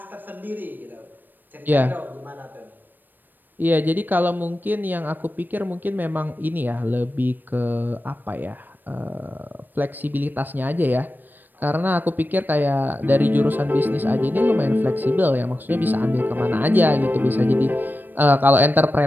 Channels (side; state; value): left; late; 0.091 ms